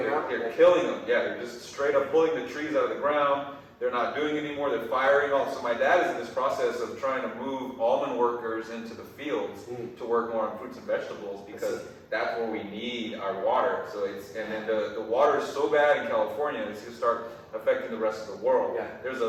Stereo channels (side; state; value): both; identical; correlation 1.00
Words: killing them. Yeah, they're just straight up pulling the trees out of the ground. They're not doing it anymore. They're firing all. So my dad is in this process of trying to move almond workers into the fields to work more on fruits and vegetables because that's where we need our water. So and then the water is so bad in California, it's going to start affecting the rest of the world. Yeah. There's